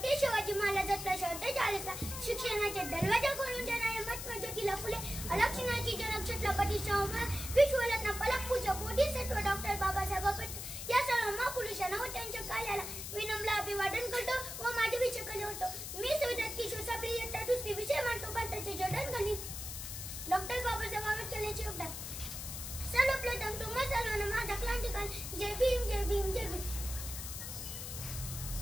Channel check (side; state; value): left; noise; hiss, 7 dB below the sound